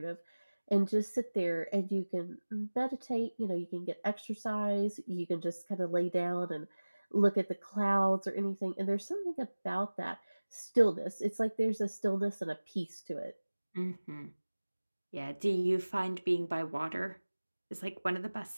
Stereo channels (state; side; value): inverted; both; correlation -1.00